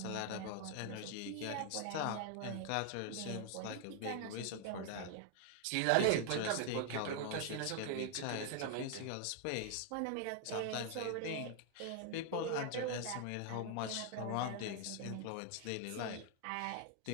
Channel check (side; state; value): both; different; correlation 0.00